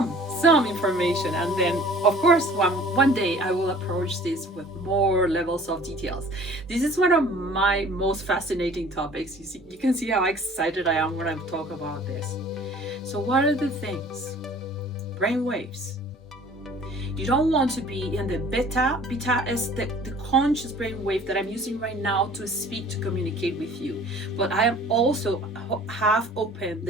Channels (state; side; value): normal; both; correlation 0.49